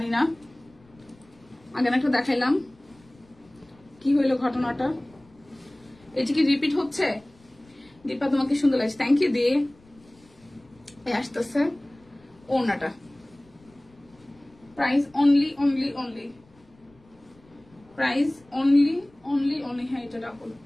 না। আগে একটা দেখাইলাম, কি হইলো ঘটনাটা? এটা কি রিপিট হচ্ছে? দীপা তোমাকে সুন্দর লাগছে, থ্যাংক ইউ। দিয়ে আসতেছে ওনাটা, প্রাইস অনলি প্রাইস অনলি। হ্যাঁ এটা ডাবল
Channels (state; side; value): noise; left; rumble, 29 dB below the sound